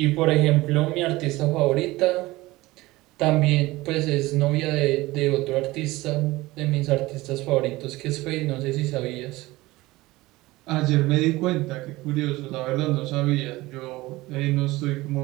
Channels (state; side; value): quieter; left; 19.5 dB